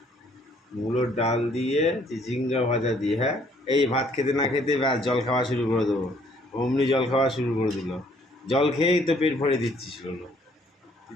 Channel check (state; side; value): normal; both; correlation 0.63